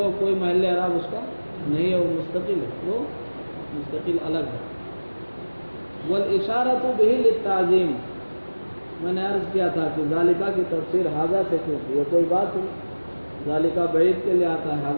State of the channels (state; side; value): inverted; both; correlation -1.00